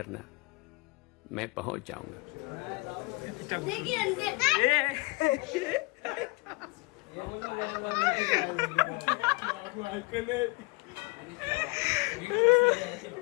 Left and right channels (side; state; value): right; quieter; 26.2 dB